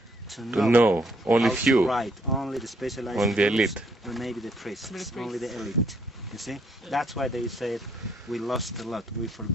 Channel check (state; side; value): normal; both; correlation 0.70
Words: to know, only how to few. write, only the specialized Only the groups, elite. or maybe the priests, only the elite. You see, that's why they said we lost a lot, we